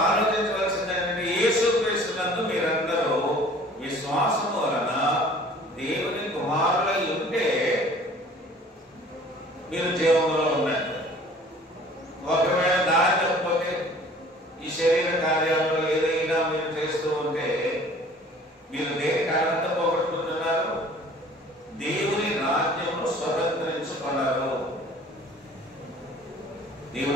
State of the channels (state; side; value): normal; both; correlation 0.50